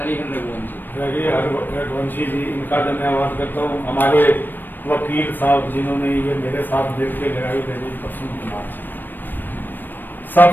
रघुवंशी जी, इनका धन्यवाद करता हूँ। हमारे वकील साहब जिन्होंने ये मेरे साथ मिल के लड़ाई लड़ी, प्रसून कुमार जी।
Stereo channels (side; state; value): right; late; 0.092 ms